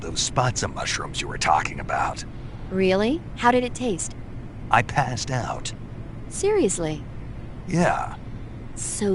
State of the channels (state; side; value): identical; both; correlation 1.00